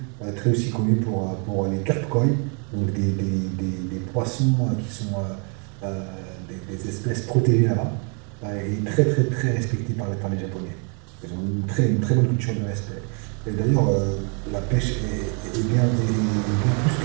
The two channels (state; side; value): quieter; left; 38.2 dB